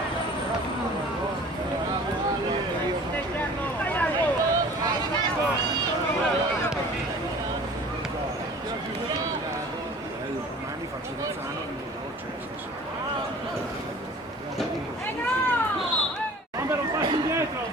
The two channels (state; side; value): normal; both; correlation 0.45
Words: Domani faccio Luzzano di Bomber un passo indietro,